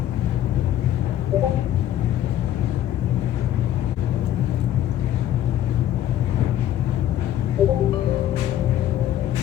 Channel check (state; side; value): quieter; right; 11.8 dB